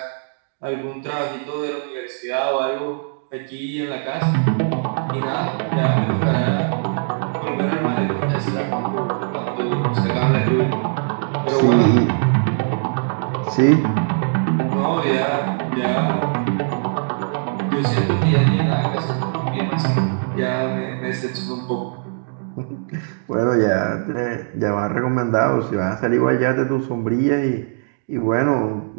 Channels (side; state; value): left; silent; digital silence